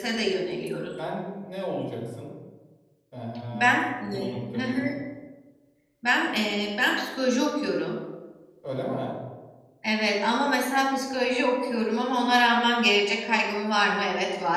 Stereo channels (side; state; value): both; identical; correlation 1.00